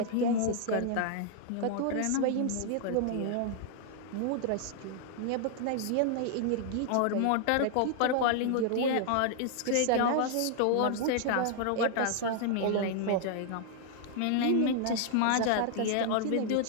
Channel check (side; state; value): both; different; correlation 0.00